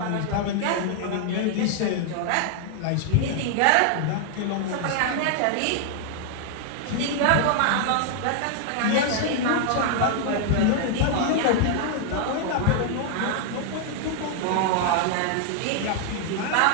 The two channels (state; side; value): different; both; correlation 0.00